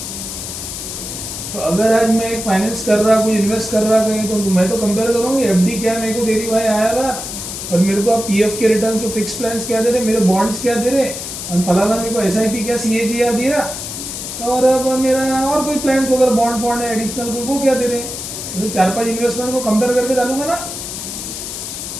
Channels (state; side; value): noise; left; hiss, 7 dB below the sound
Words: तो अगर आज मैं एक फाइनेंस कर रहा, कोई इन्वेस्ट कर रहा कहीं, तो मैं तो कंपेयर करूँगी FD क्या मेरे को दे रही भाई IRR, और मेरे को PF के रिटर्न जो फिक्स प्लान्स क्या दे रहे, मेरे बॉन्ड्स क्या दे रहे, और फलाना मेरे को SIP क्या CAGR दे रहा, और अब मेरा और कोई प्लान्स होगा बॉन्ड फॉन्ड है एडिशनल, तो वो क्या दे रहे हैं। जैसे 4-5 इन्वेस्टमेंट को कंपेयर करके डालूंगा ना,